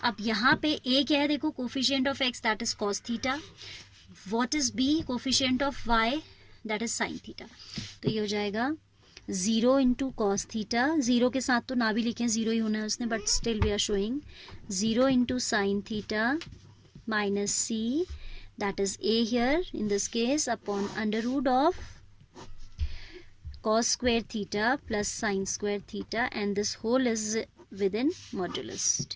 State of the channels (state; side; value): identical; both; correlation 1.00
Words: अब यहाँ पे a क्या है, देखो coefficient of x that is cos theta, what is b coefficient of y that is sine theta. तो ये हो जाएगा 0 इंटू कॉस थीटा, 0 के साथ तो ना भी लिखें, 0 ही होना है उसने, but still we are showing 0 into sine theta minus c that is a here in this case upon under root of cos square theta plus sin square theta, and this whole is with in modulus,